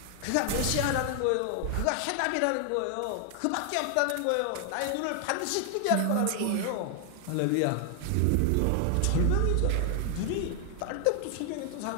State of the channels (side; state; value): both; different; correlation 0.00